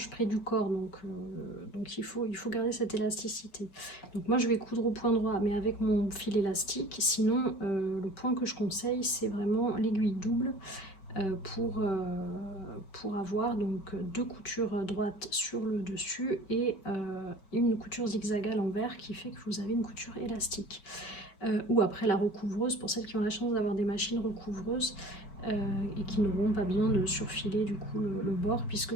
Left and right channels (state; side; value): late; right; 5.2 ms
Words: près du corps, donc il faut garder cette élasticité. Donc moi je vais coudre au point droit mais avec mon fil élastique, sinon le point que je conseille c'est vraiment l'aiguille double pour avoir donc 2 coutures droites sur le dessus et une couture zigzag à l'envers qui fait que vous avez une couture élastique. Ou après la recouvreuse, pour celles qui ont la chance d'avoir des machines recouvreuses, et qui n'auront pas besoin de surfiler du coup le bord puisque